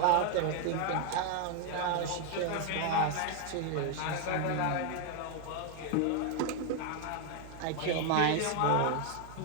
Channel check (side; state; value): both; different; correlation 0.01